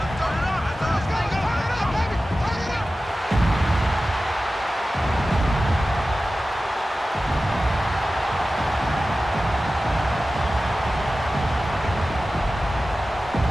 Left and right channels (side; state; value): both; normal; correlation 0.95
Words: turn it up. Let's go. Turn it up, baby. Turn it up.